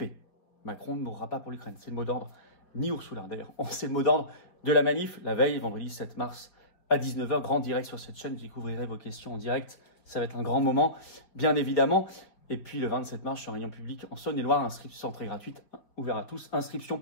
Macron ne mourra pas pour l'Ukraine. C'est le mot d'ordre. Ni Ursula, d'ailleurs. C'est le mot d'ordre de la manif, la veille, vendredi 7 mars à 19h. Grand direct sur cette chaîne. Je découvrirai vos questions en direct. Ça va être un grand moment, bien évidemment. Et puis le 27 mars, je suis en réunion publique en Saône-et-Loire. Inscription très gratuite, ouvert à tous. Inscription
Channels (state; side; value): late; right; 5.0 ms